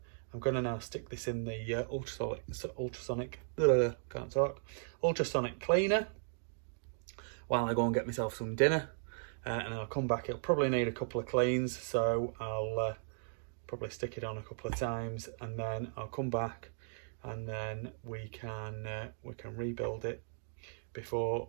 now stick this in the ultrasonic cleaner while I go and get myself some dinner, and I'll come back. It'll probably need a couple of cleans, so I'll probably stick it on a couple of times, and then I'll come back, and then we can rebuild it before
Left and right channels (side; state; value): left; silent; digital silence